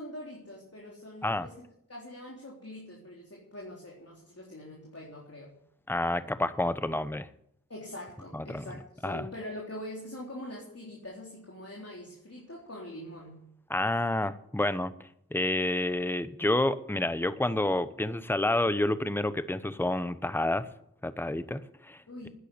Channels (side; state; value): both; normal; correlation 0.73